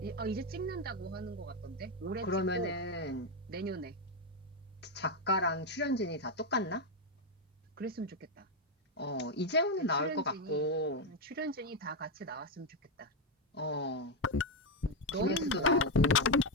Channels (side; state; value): both; normal; correlation 0.05